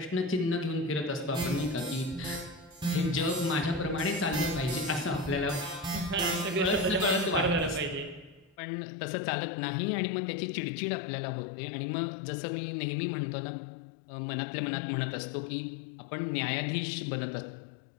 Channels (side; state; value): right; drops out; at 8.6 s